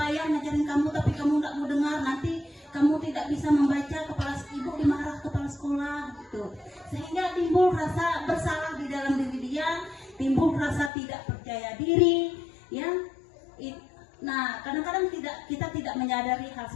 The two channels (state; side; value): drops out; right; at 10.9 s